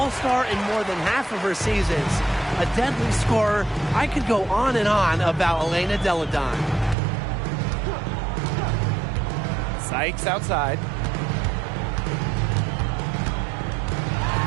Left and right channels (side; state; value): left; drops out; at 7.0 s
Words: in more than half of her seasons. A deadly scorer. I could go on and on about Elena Delle Donne. Sykes outside.